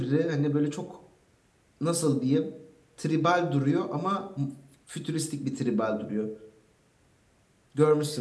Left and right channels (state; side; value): identical; both; correlation 1.00